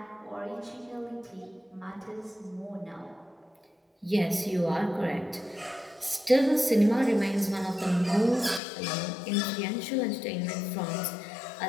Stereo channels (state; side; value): drops out; right; at 8.6 s